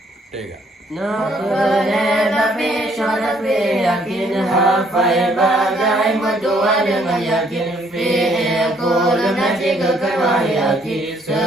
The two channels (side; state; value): both; normal; correlation 0.66